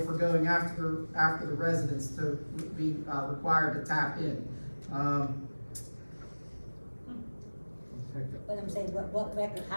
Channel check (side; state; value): both; inverted; correlation -1.00